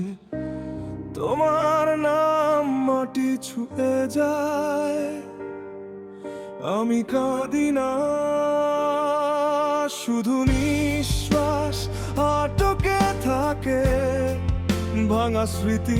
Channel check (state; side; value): identical; both; correlation 1.00